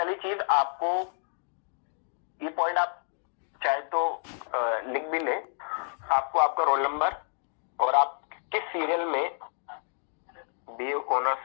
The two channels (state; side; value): silent; right; digital silence